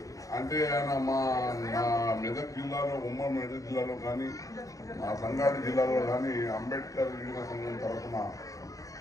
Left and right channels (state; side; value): late; right; 0.16 ms